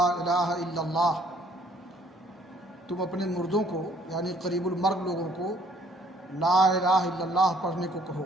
الہ الا اللہ، تم اپنے مردوں کو یعنی قریب المرگ لوگوں کو لا الہ الا اللہ پڑھنے کو کہو،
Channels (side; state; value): both; normal; correlation 0.61